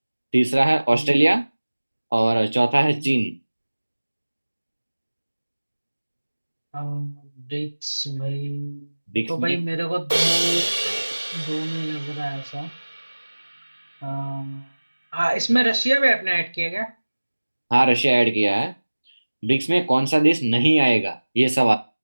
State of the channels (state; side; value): inverted; both; correlation -1.00